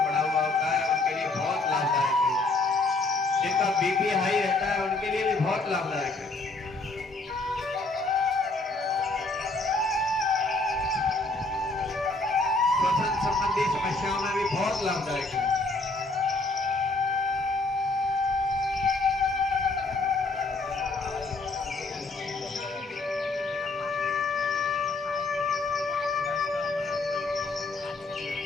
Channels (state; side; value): quieter; right; 3.3 dB